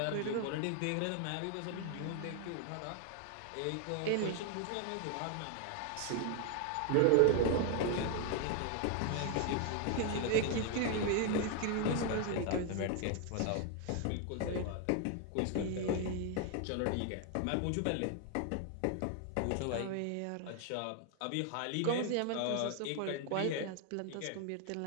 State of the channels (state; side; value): different; both; correlation 0.00